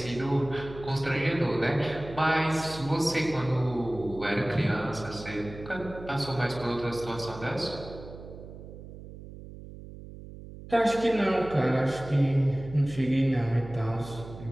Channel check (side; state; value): right; noise; hum, 14 dB below the sound